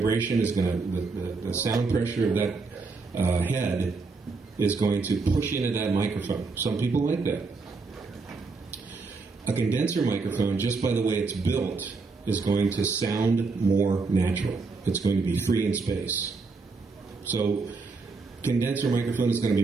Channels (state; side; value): quieter; left; 4.1 dB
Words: is going to, the sound pressure of that head is going to push into that microphone. Some people like that. A condenser microphone, just by the way it's built, is going to sound more natural. It's going to be free in space. So, condenser microphone is going to